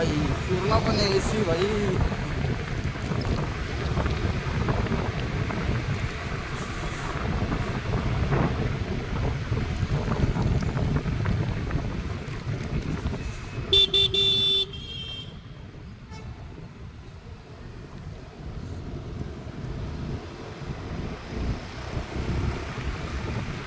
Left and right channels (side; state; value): both; identical; correlation 1.00